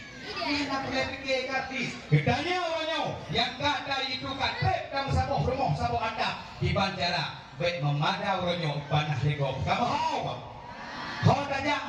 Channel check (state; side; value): identical; both; correlation 1.00